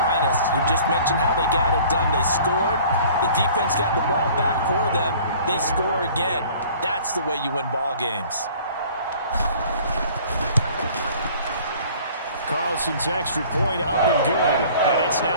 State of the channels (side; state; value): both; inverted; correlation -0.50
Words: You just mentioned how they got it done. They scored. The defense got the ball back for them. They score again. That's the way you win ball games. Carlson's extra point up and good. And it's